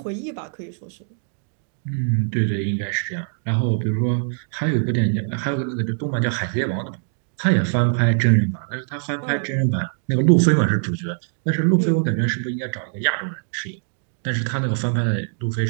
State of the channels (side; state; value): left; silent; digital silence